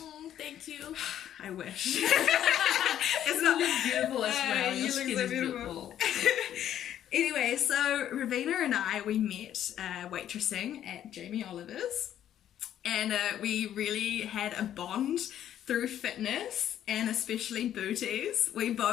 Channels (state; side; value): quieter; right; 10.9 dB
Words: Thank you. I wish. It's not beautiful as well. you Your look skin so is beautiful. Anyway, so Raveena and I, we met waitressing at Jamie Oliver's, and we really had a bond through fitness and especially booties. We